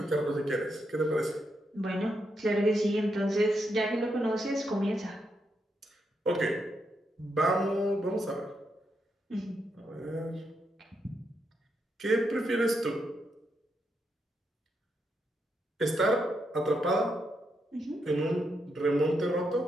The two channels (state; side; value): normal; both; correlation 0.82